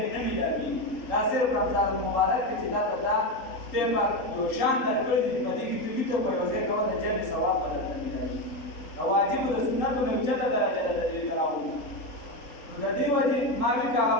نه میلاږي دا صرف رمضان المبارک کې چې دا ته دا خدای پاک یو شان درکړی دی په دې کې ته ویته په یو ځای کولی جمع ثواب به درته ملایي د واجبو د سنتو نه اوچته درجه ده د دې تراوح نو د دې وجې ما وي که هغه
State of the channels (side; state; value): right; late; 3.8 ms